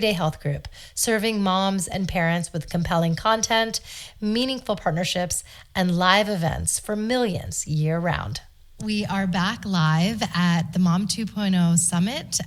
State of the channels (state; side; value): identical; both; correlation 1.00